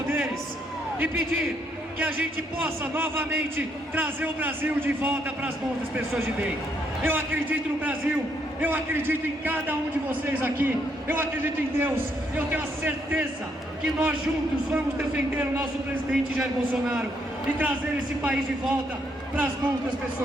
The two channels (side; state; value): both; normal; correlation 0.73